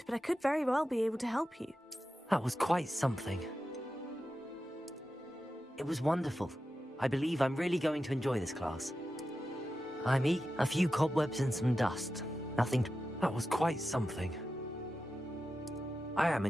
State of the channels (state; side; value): normal; both; correlation 0.91